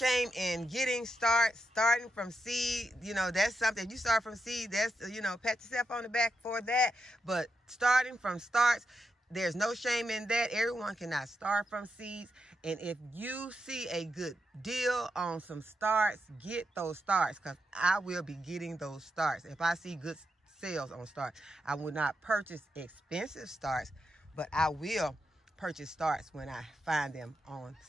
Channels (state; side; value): normal; both; correlation 0.85